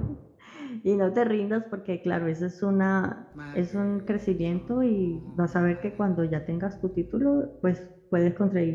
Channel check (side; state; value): both; identical; correlation 1.00